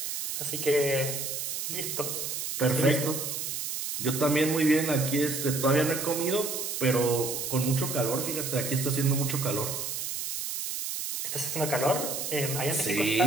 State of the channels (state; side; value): noise; right; hiss, 4 dB below the sound